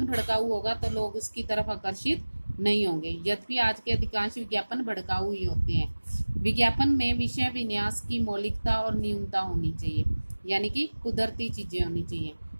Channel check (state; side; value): inverted; both; correlation -1.00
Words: भड़काऊ होगा तो लोग उसकी तरफ आकर्षित नहीं होंगे, यद्यपि आज के अधिकांश विज्ञापन भड़काऊ ही होते हैं। विज्ञापन में विषय विन्यास की मौलिकता और न्यूनता होनी चाहिए, यानी कि कुदरती चीजें होनी चाहिए।